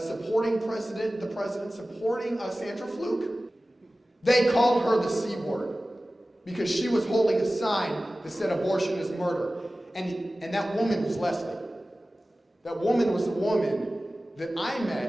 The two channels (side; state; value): both; normal; correlation 0.96